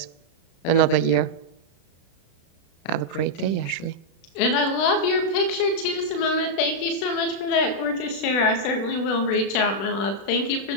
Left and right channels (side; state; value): right; late; 36 ms